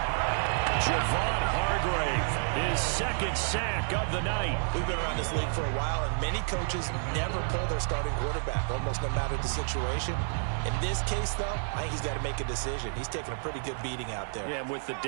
Javon Hargrave, his 2nd sack of the night. We've been around this league for a while, and many coaches never pull their starting quarterback, almost no matter the situation. In this case, though, I think he's got to make a decision. He's taking a pretty good beating out there. Yeah, and with the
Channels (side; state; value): left; silent; 58 dB below the other